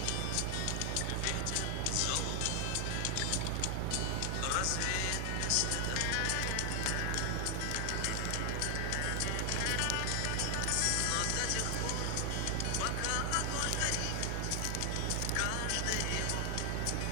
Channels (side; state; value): both; different; correlation 0.00